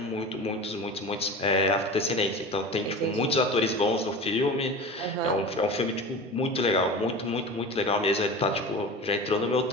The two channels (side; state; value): both; normal; correlation 0.32